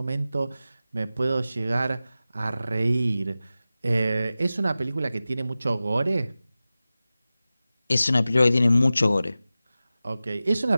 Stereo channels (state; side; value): inverted; both; correlation -0.95